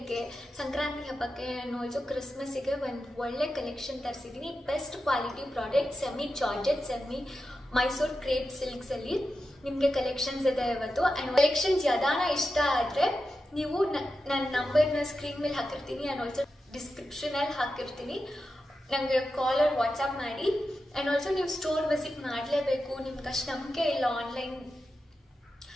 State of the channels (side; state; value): both; normal; correlation 0.90